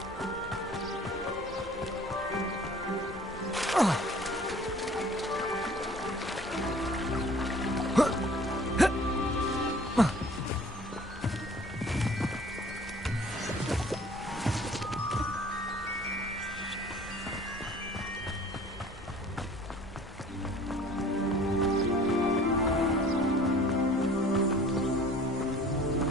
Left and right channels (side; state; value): both; normal; correlation 0.50